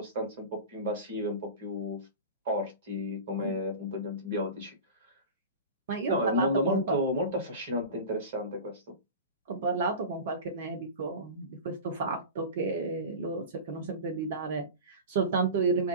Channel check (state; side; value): inverted; both; correlation -0.30